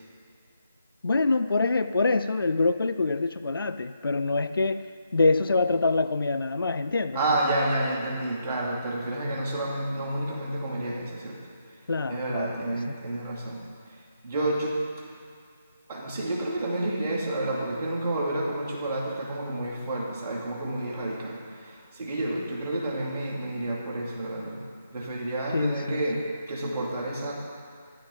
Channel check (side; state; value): both; inverted; correlation -0.79